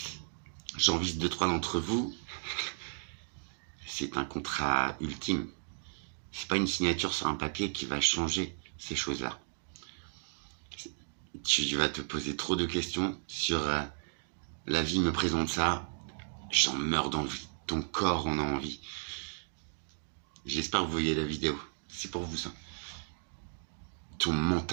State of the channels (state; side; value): silent; left; 55 dB below the other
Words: j'en vise 2-3 d'entre vous, c'est un contrat ultime. C'est pas une signature sur un papier qui va changer ces choses-là. Tu vas te poser trop de questions sur la vie me présente ça, j'en meurs d'envie, ton corps en a envie. J'espère que vous voyez la vidéo, c'est pour vous ça. Ton